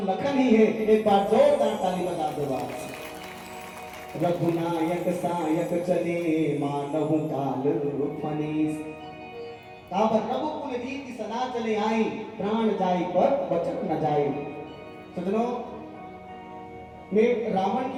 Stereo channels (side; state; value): both; identical; correlation 1.00